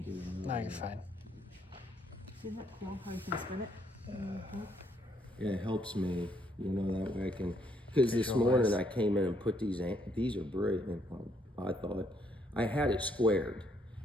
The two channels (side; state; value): both; normal; correlation 0.71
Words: No, you're fine. Isn't that cool how you can spin it? Yeah, it helps me, you know, that way I can, because this morning I came in and put these are brilliant, I thought. I had it squared,